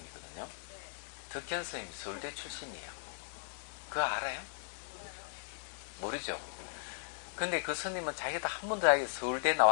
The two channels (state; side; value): silent; right; digital silence